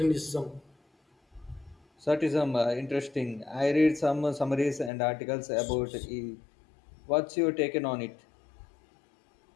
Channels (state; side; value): drops out; right; at 4.9 s